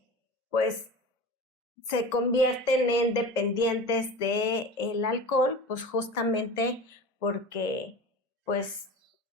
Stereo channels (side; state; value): both; normal; correlation 0.33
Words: pues, se convierten en dependientes del alcohol, pues justamente porque, pues,